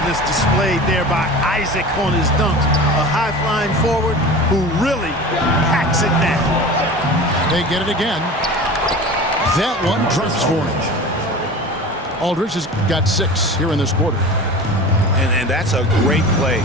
displayed there by Isaac on his dunks. A high-flying forward who really packs it down. They get it again. That one drops for him. Aldridge has got 6 here in this quarter. And that's a great play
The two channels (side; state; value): both; normal; correlation 0.35